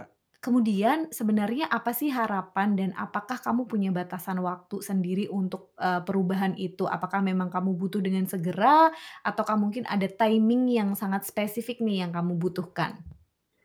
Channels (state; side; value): identical; both; correlation 1.00